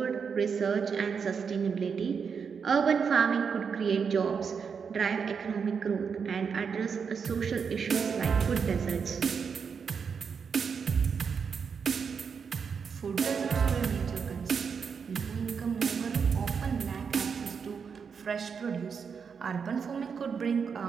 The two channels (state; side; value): quieter; left; 6.2 dB